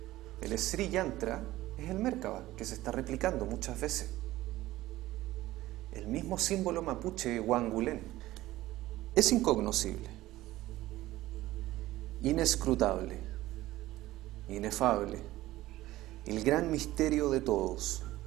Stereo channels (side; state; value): left; quieter; 16.4 dB